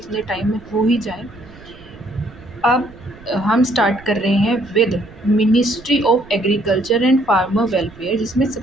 टाइम में हो ही जाए। अब हम स्टार्ट कर रहे हैं with ministry of agriculture and farmer welfare, जिसमें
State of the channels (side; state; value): right; noise; rumble, 22 dB below the sound